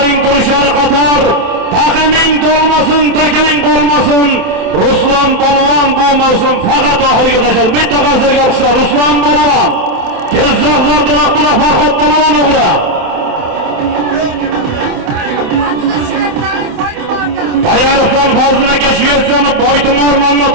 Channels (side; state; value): left; late; 28 ms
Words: turishar qator. Taqiming to'lmasin, takang qolmasin. Ruslan Polvon bu mavsum faqat oxiriga tashadi. Bitta qarshiga olishlar Ruslan Polvon. Jizzax zardiroq buloq Farhod Polvon o'g'li. Bayariqdan Fazlinaga Shvetsiyani Boytumor